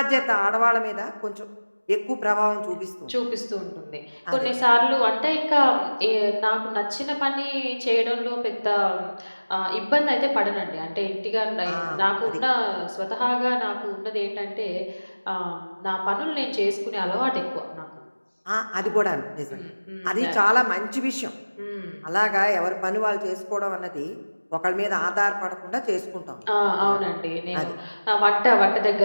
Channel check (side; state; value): both; inverted; correlation -1.00